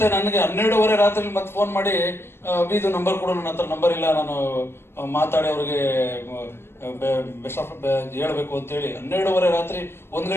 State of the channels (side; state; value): right; late; 0.12 ms